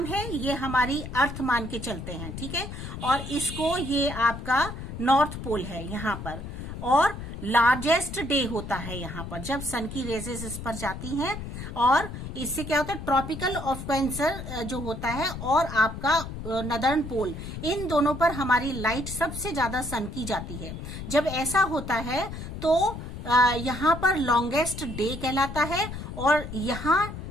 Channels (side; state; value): left; noise; rumble, 8 dB below the sound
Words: है, ये हमारी अर्थ मान के चलते हैं, ठीक है, और इसको ये आपका नॉर्थ पोल है यहाँ पर, और लार्जेस्ट डे होता है यहाँ पर जब सन की रेजेस इस पर जाती हैं, और इससे क्या होता है, ट्रॉपिकल ऑफ कैंसर जो होता है और आपका नदर्न पोल, इन दोनों पर हमारी लाइट सबसे ज्यादा सन की जाती है। जब ऐसा होता है तो यहाँ पर लॉन्गेस्ट डे कहलाता है, और यहाँ